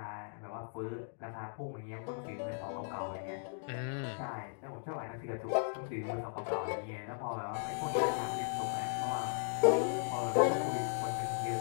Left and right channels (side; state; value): right; silent; digital silence